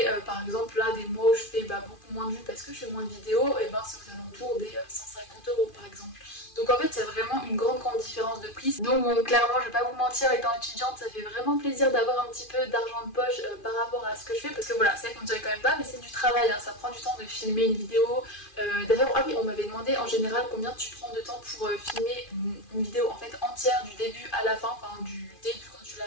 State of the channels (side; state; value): right; late; 2.4 ms